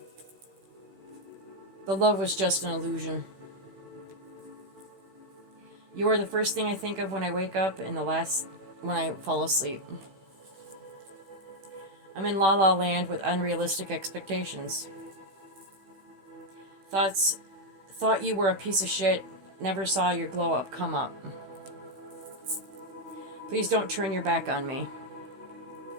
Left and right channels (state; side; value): late; left; 16 ms